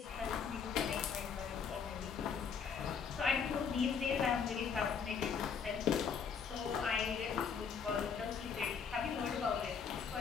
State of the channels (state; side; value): quieter; right; 6.4 dB